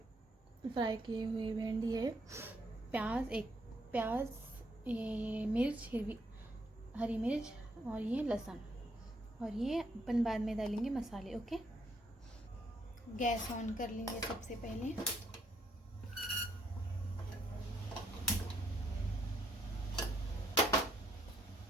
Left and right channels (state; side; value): normal; both; correlation 0.72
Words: भिंडी है। एक प्याज, ये मिर्च, हरी मिर्च, और ये लहसुन, और ये अपन बाद में डालेंगे मसाले। ओके, गैस ऑन कर लेंगे सबसे पहले।